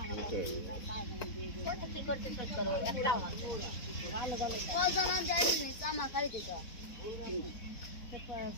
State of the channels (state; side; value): late; right; 4.1 ms